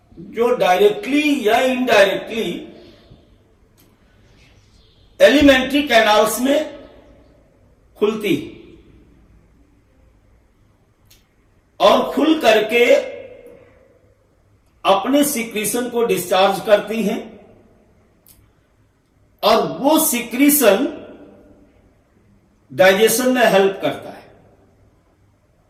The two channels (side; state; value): both; identical; correlation 1.00